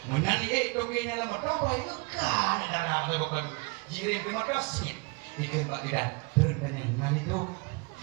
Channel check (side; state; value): left; quieter; 28.7 dB